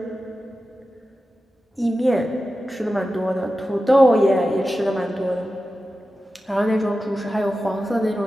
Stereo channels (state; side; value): normal; both; correlation 0.93